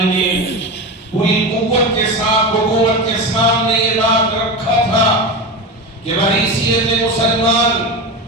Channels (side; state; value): both; normal; correlation 0.22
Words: نے پوری قوت کے ساتھ حکومت کے سامنے یہ بات رکھا تھا کہ بحیثیت مسلمان